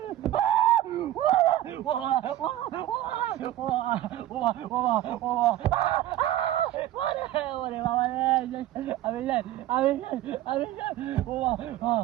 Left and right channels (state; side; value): quieter; left; 13.7 dB